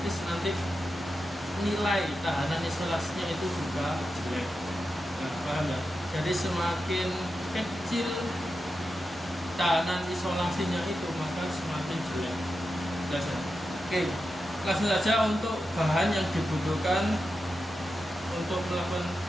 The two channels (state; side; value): normal; both; correlation 0.90